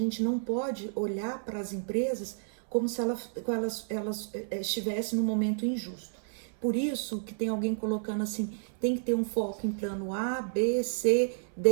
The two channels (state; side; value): silent; left; 57 dB below the other